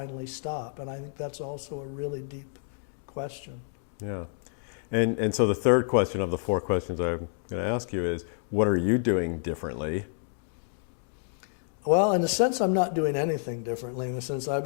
stop? And I think that's also a really deep question. Yeah. And so the third question of the four questions I'm going to ask you is, what are you doing differently? Well, in a sense, I'm not doing anything differently. In the sense, I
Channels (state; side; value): silent; right; digital silence